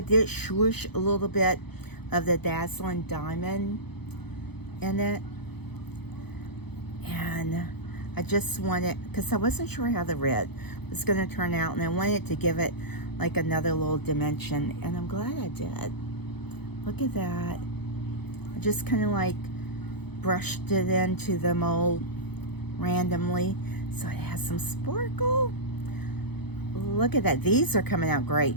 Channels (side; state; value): right; late; 0.98 ms